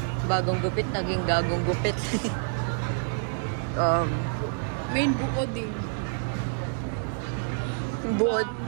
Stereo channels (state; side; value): silent; left; digital silence